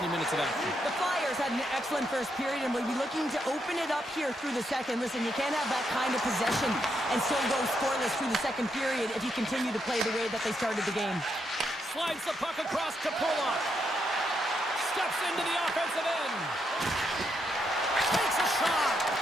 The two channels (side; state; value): both; normal; correlation 0.80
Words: minutes of action? The Flyers had an excellent first period and will be looking to open it up here through the second. Listen, you can't have that kind of possession and still go scoreless through the second period if you continue to play the way that they started the game. Slides the puck across to Pulock. Steps into the offensive end. Takes a shot.